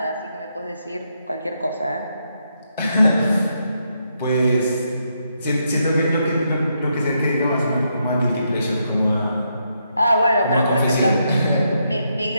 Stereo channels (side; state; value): both; inverted; correlation -0.79